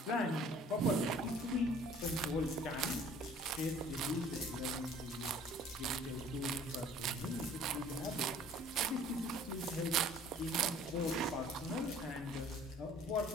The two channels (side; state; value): both; normal; correlation 0.52